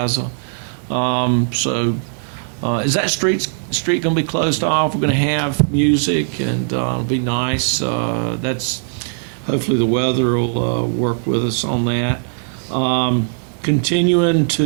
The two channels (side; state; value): left; silent; 57 dB below the other